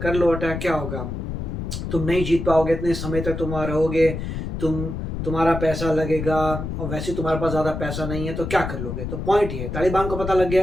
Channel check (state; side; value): noise; left; rumble, 5 dB below the sound